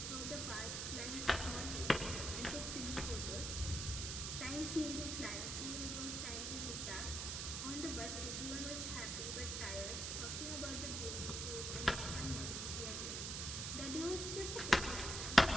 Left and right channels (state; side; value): noise; right; hiss, 2 dB below the sound